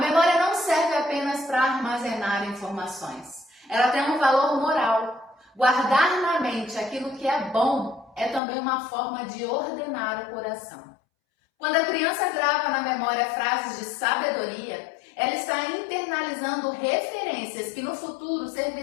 não serve apenas para armazenar informações. Ela tem um valor moral. Guardar na mente aquilo que é bom é também uma forma de ordenar o coração. Quando a criança grava na memória frases de sabedoria, ela está internalizando referências que no futuro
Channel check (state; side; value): drops out; right; at 8.4 s